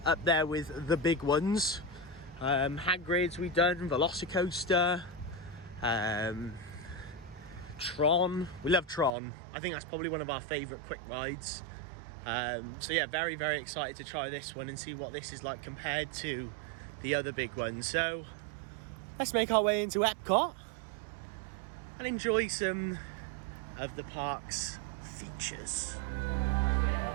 up there with the big ones. Hagrid's we've done, Velocicoaster, Tron. We love Tron. I think that's probably one of our favourite quick rides. So yeah, very, very excited to try this one and see what this is like compared to the other big ones. So let's make our way into Epcot and enjoy some of the park's features.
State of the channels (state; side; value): drops out; left; at 9.1 s